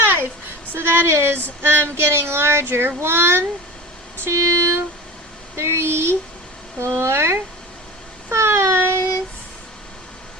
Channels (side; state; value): both; normal; correlation 0.33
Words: So that is getting larger. 1, 2, 3, 4, 5.